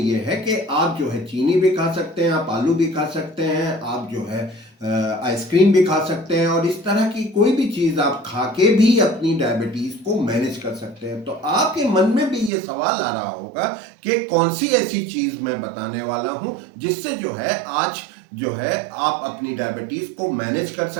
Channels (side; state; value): left; drops out; at 12.5 s